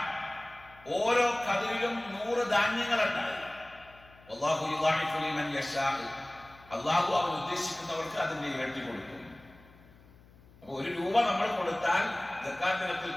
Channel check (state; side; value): noise; left; hum, 25 dB below the sound